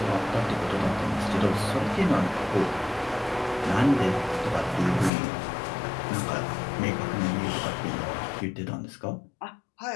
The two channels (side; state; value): right; drops out; at 5.1 s